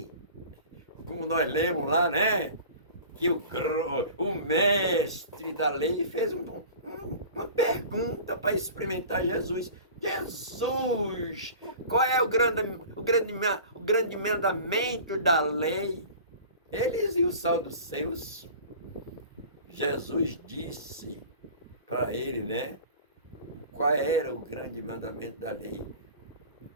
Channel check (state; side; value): inverted; both; correlation -0.40